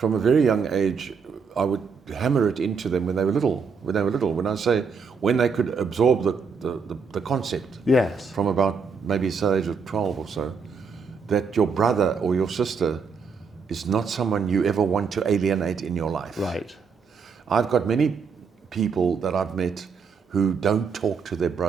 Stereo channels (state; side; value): quieter; left; 5.5 dB